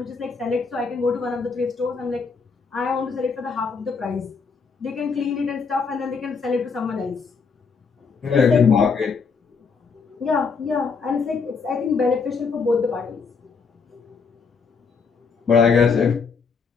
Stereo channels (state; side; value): quieter; right; 5.2 dB